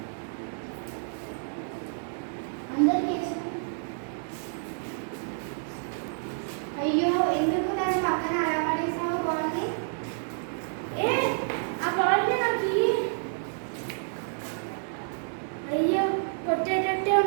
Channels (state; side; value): silent; left; 59 dB below the other